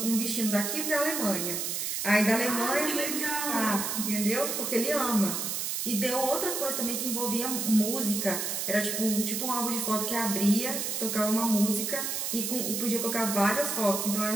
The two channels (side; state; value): right; noise; hiss, 2 dB below the sound